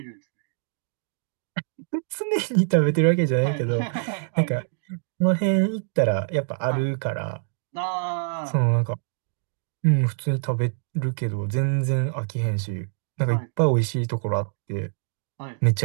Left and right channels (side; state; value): left; silent; digital silence